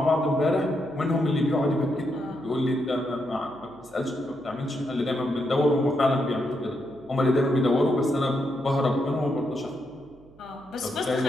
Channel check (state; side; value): noise; right; hum, 27 dB below the sound